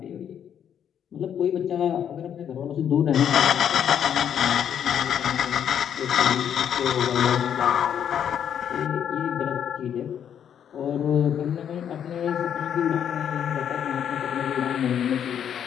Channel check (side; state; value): right; quieter; 9.0 dB